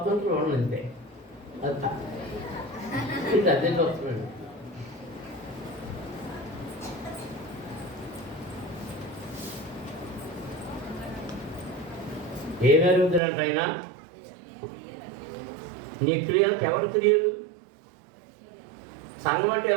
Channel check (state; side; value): drops out; left; at 13.2 s